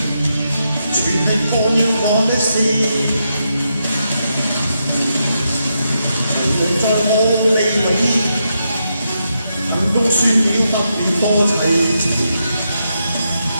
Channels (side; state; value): both; inverted; correlation -0.83